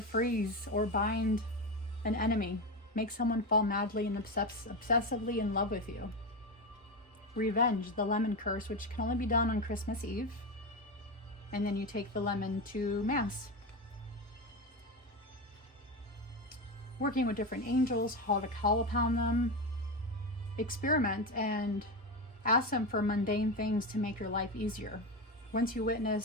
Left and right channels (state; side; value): normal; both; correlation 0.17